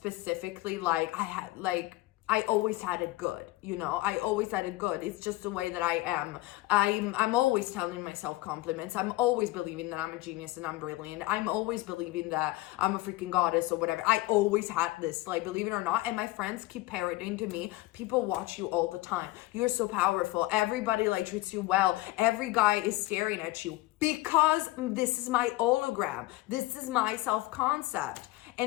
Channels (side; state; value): right; quieter; 18.6 dB